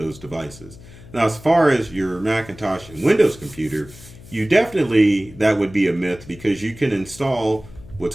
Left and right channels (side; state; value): left; noise; hum, 19 dB below the sound